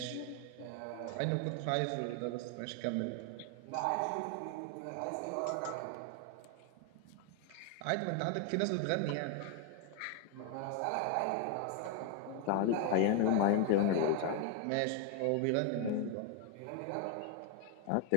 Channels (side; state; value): both; different; correlation 0.01